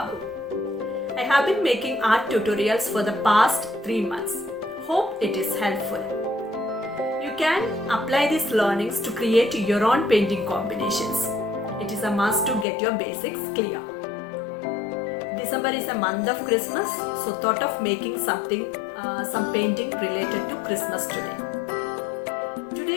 I have been making art tutorials for the past 3 months. Hope it is helpful. You can apply these learnings to create your own painting combinations. It is a must to get your basics clear. December is a month of Christmas, so thought of making some painting related to Christmas today.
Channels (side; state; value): right; drops out; at 12.7 s